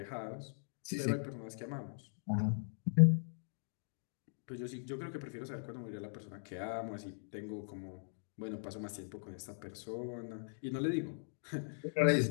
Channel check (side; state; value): right; silent; digital silence